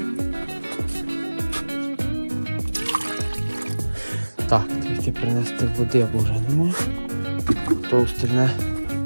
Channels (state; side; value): inverted; both; correlation -1.00